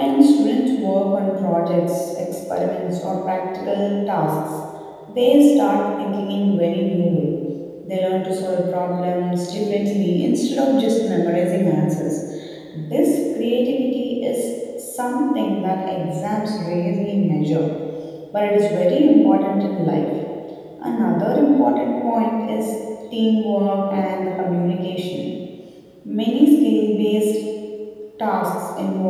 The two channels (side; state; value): both; identical; correlation 1.00